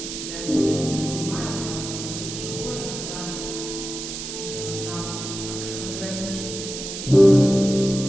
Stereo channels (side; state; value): right; noise; hiss, 7 dB below the sound